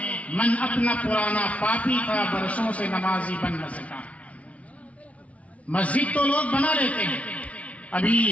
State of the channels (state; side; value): late; right; 0.066 ms